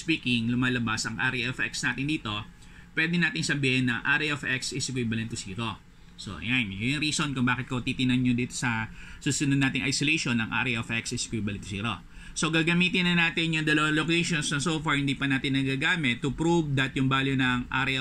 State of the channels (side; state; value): both; identical; correlation 1.00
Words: lumalabas ang area of x natin dito. Pwede natin sabihin na area of x is equivalent to 0. So, ayan. Yung reason kung bakit ko titinan nyo dito sa susunod nating isolation ng area of x is equivalent to 0. So, gagamitin na natin yung dalawang locations na so far hindi pa natin nagagamit to prove that yung value ng